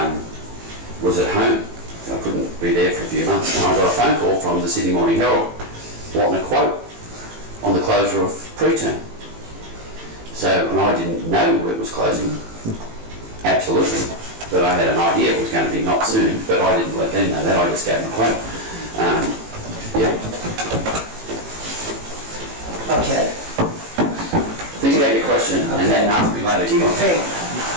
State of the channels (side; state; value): left; late; 18 ms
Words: was at home. I couldn't be there for a few months, and I got a phone call from the Sydney Morning Herald wanting a quote on the closure of preterm. So, and I didn't know it was closing, absolutely, but I had an idea it was going to be not soon, but I didn't let them know that, I just gave them a quote. Yeah. Okay. Think about your question, and then ask me later. Do you think,